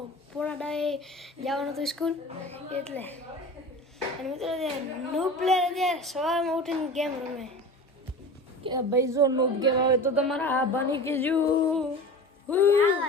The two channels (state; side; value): normal; both; correlation 0.34